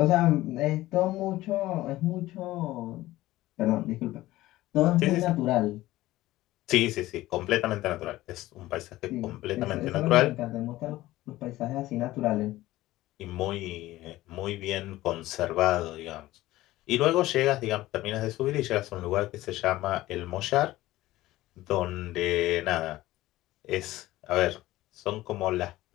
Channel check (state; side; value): quieter; right; 16.7 dB